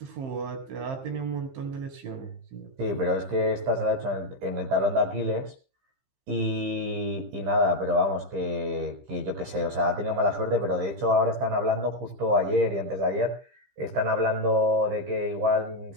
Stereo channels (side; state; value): left; late; 15 ms